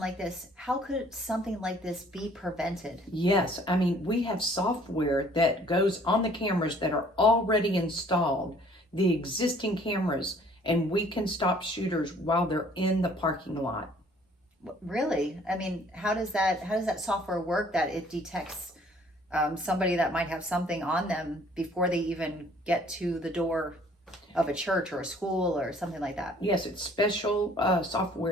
this, how could something like this be prevented? Yes, I mean, we have software that goes on the cameras that are already installed, the existing cameras, and we can stop shooters while they're in the parking lot. Really? I mean, how does that software work that it detects somebody that might have something on them before they even get to the door of a church or a school or something like that? Yes, it's special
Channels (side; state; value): both; normal; correlation 0.57